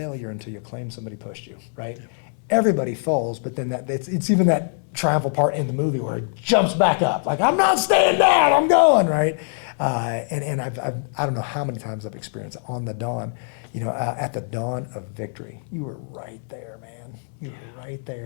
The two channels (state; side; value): silent; right; 63 dB below the other